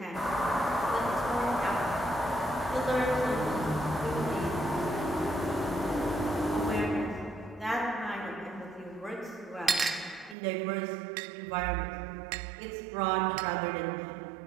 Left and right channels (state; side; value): drops out; left; at 10.4 s